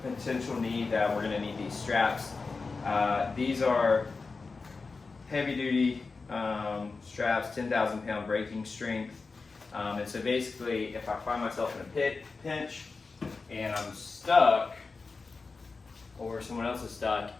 potential need that we're going to need these straps. These are heavy duty straps, 10,000 pound braking strength, and so basically if I find myself in a pinch and I'm stuck or someone else is stuck,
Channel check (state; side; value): quieter; right; 4.2 dB